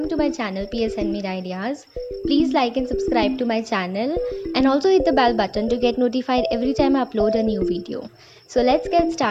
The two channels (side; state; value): both; identical; correlation 1.00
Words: to my channel PS Handmade Ideas. Please like and subscribe to my channel and also hit the bell button to get notified every time I upload a new video. So let's get